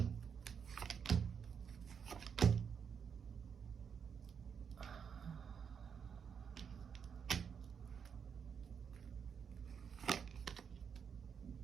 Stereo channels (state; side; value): quieter; left; 6.9 dB